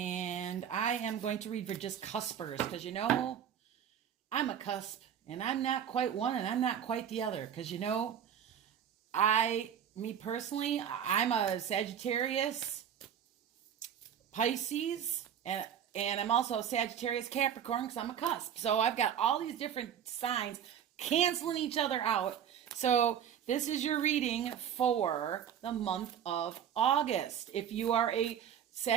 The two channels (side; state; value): left; quieter; 9.0 dB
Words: I am going to read for just cuspers because I'm a cusp, and I'm not quite one, and I'm not quite the other. Because me personally, I'm a Sagittarius, Pisces, and I'm also a Sagittarius Capricorn because I'm a cusp. So I've got all these different signs canceling each other out. So this is your reading for the month of August. If you are a